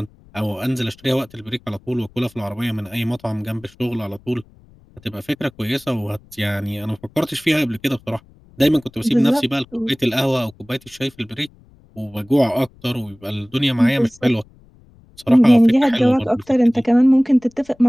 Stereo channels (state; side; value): noise; left; rumble, 27 dB below the sound